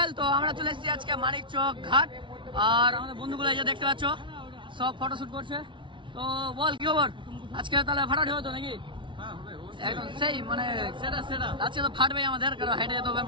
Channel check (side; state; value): left; late; 0.24 ms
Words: তো আমরা চলে এসেছি আজকে মানিকচক ঘাট, আর আমাদের বন্ধুগুলো এই যে দেখতে পাচ্ছ সব ফটোশুট করছে। তো বল কি খবর আজকে? তাহলে ফাটাফাটি হতো নাকি? একদম সেই মানে আজকে তো ফাটবেই আমাদের, কারণ হেঁটে যেতে হবে